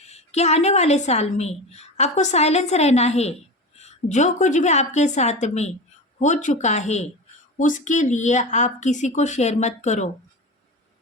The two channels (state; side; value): normal; both; correlation 0.27